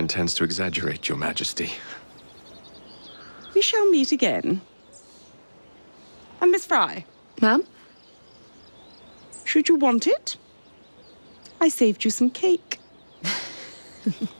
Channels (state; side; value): inverted; both; correlation -1.00